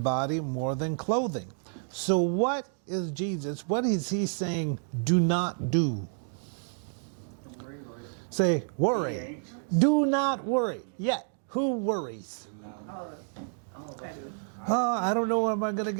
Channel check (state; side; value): silent; left; 58 dB below the other